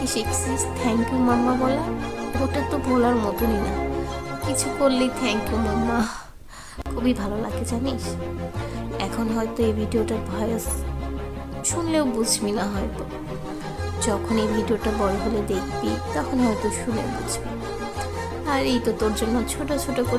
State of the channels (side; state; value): both; identical; correlation 1.00